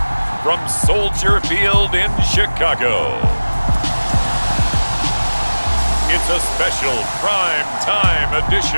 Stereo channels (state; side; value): inverted; both; correlation -1.00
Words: from Soldier Field in Chicago, it's a special prime time